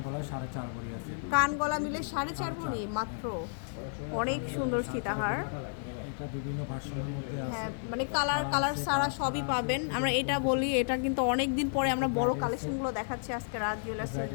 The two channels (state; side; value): silent; right; digital silence